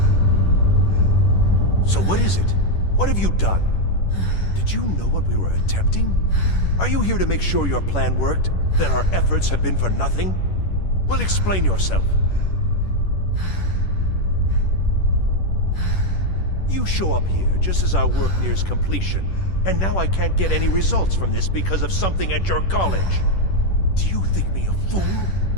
So what is it? What have you done? Did you know what we were attempting? Are you here to make sure your plan worked? That our efforts have been for nothing? Well, explain yourself. You show up here just as our work nears completion, and now I can't get any results from this because of something at your college. Do you think me a fool?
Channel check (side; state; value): right; late; 10 ms